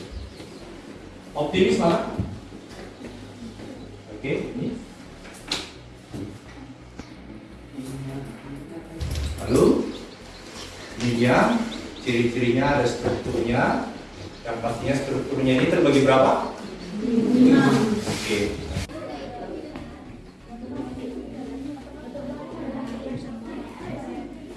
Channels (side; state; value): both; identical; correlation 1.00